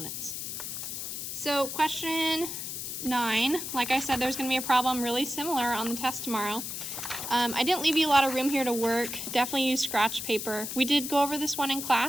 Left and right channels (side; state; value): left; noise; hiss, 6 dB below the sound